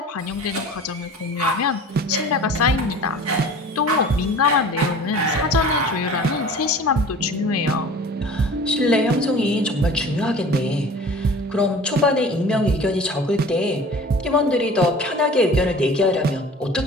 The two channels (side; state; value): both; normal; correlation 0.43